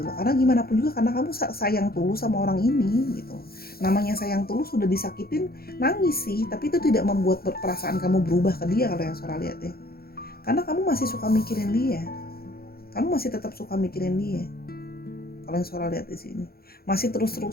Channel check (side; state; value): right; late; 0.44 ms